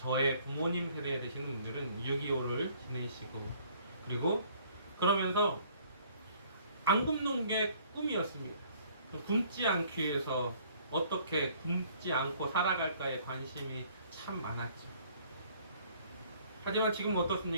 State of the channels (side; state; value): both; inverted; correlation -0.59